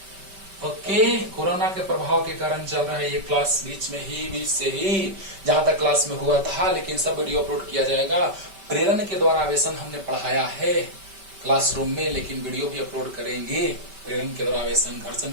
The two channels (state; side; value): late; left; 5.2 ms